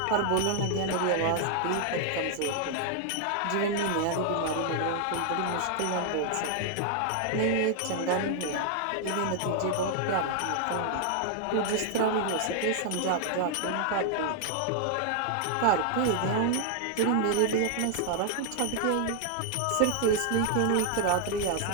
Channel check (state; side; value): different; both; correlation 0.00